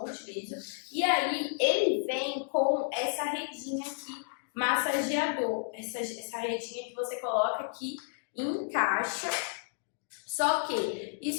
utilizo. E aí ele vem com essa redinha aqui, massageador, essa redinha que você coloca aqui, encaixa. Só que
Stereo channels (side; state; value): right; silent; digital silence